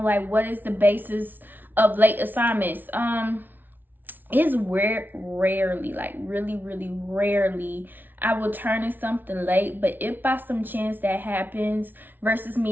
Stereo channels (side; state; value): left; late; 0.089 ms